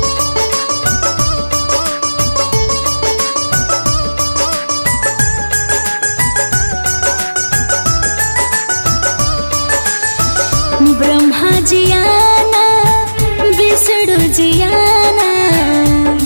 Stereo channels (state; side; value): inverted; both; correlation -1.00